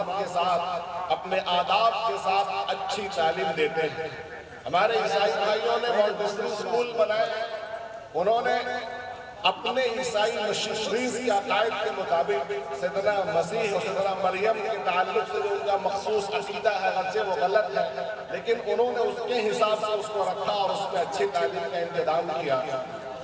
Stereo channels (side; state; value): both; identical; correlation 1.00